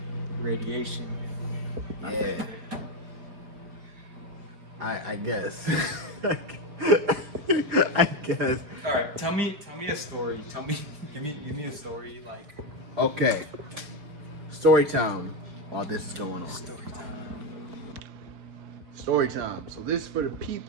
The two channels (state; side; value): late; left; 4.9 ms